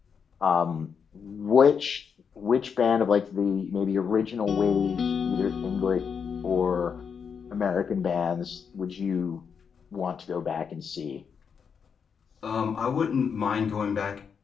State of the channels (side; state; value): right; quieter; 6.6 dB